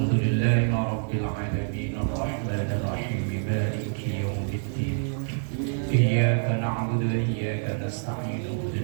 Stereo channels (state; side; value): silent; left; digital silence